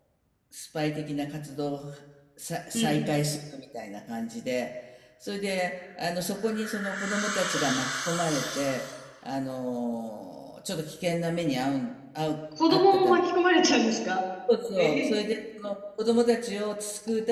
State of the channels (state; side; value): identical; both; correlation 1.00